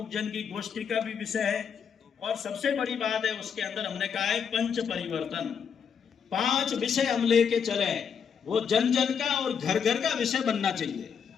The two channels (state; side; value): quieter; right; 7.0 dB